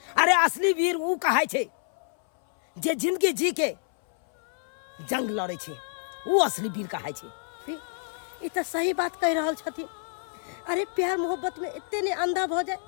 अरे असली वीर उ कहाय छै जे जिंदगी जी के जंग लड़े छै, उ असली वीर कहाय छै। ई तो सही बात कह रहल छथिन। अरे प्यार मोहब्बत में इतने ने अंधा भ जाए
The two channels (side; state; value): right; silent; 60 dB below the other